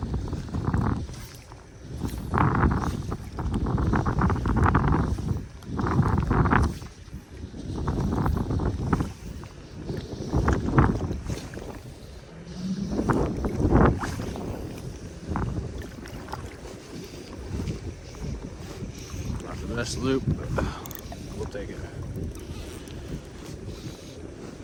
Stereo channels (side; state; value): both; identical; correlation 1.00